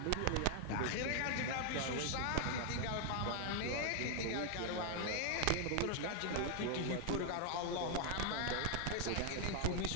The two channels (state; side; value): different; both; correlation 0.00